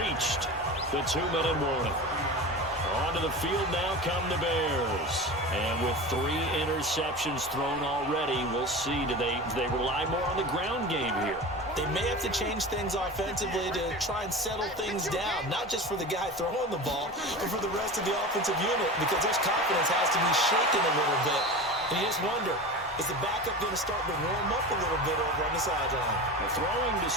the 2-minute warning. Onto the field now come the Bears. And with 3 interceptions thrown already, we'll see. Do they rely more on the ground game here? They may have to change things offensively to try and settle things down, not just for the guy throwing the ball, but for the rest of the offensive unit, because their confidence has to be shaken a little bit. And you just wonder, is the backup going to start to warm up a little bit over on the sideline? Throwing to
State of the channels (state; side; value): normal; both; correlation 0.30